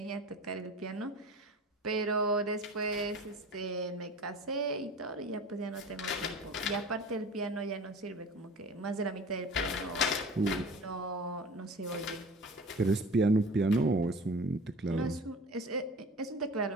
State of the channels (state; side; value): normal; both; correlation 0.39